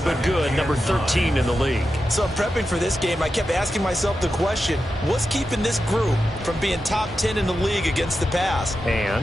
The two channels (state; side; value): normal; both; correlation 0.90